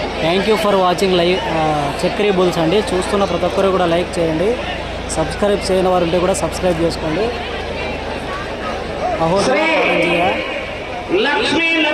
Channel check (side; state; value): both; identical; correlation 1.00